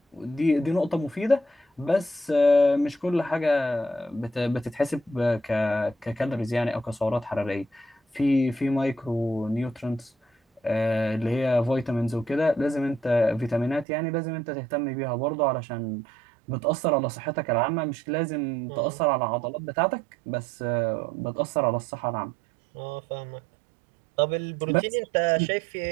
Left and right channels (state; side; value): drops out; left; at 13.9 s